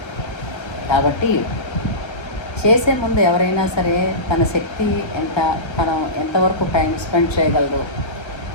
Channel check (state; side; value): late; right; 1.3 ms